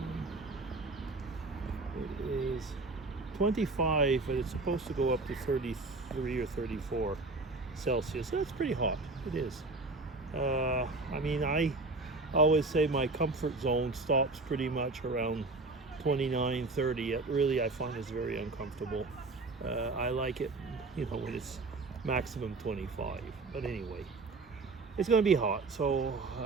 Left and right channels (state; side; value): quieter; left; 3.4 dB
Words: It is 25, but it's supposed to go up to 33 or 34 Celsius. So it's pretty hot. It is. I always say my comfort zone stops pretty much around 29, 30. It really, I find, is very uncomfortable. I like it, when it's maximum 25. But anyway, it's going to be hot, so